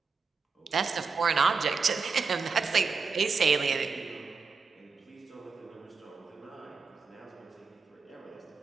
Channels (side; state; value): left; quieter; 5.1 dB